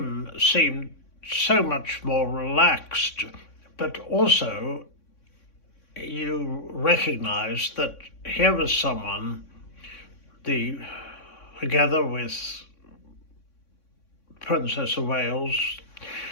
seemed so much more relaxed, but also you recognise that here was someone, together with Princess of Wales,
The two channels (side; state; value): right; late; 3.6 ms